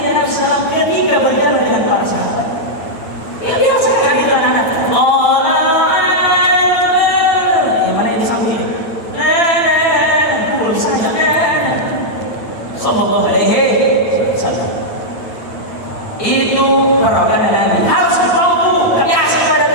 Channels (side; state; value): right; late; 9.1 ms